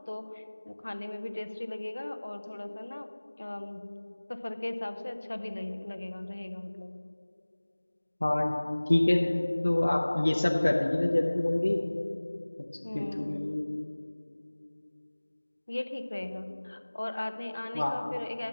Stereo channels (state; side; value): inverted; both; correlation -1.00